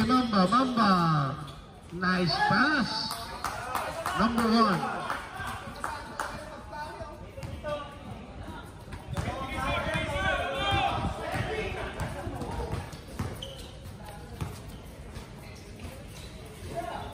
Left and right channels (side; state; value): both; identical; correlation 1.00